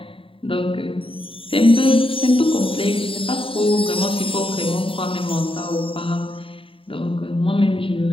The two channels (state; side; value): late; right; 0.26 ms